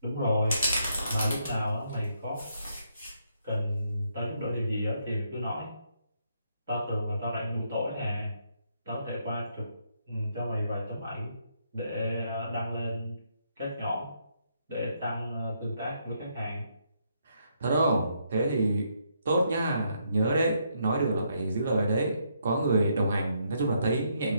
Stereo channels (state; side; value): inverted; both; correlation -0.75